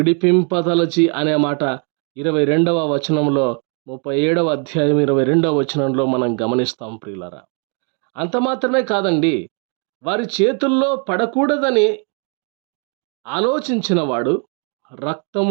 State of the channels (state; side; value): quieter; left; 38.8 dB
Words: అనే మాట 22వ వచనంలో 37వ అధ్యాయం 22వ వచనంలో మనం గమనిస్తాం ప్రియులారా. అంత మాత్రమే కాదండి, వారి చేతుల్లో పడకూడదని ఆలోచించిన వాడు